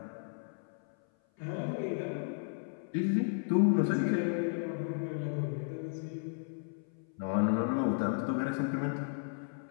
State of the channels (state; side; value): silent; right; 55 dB below the other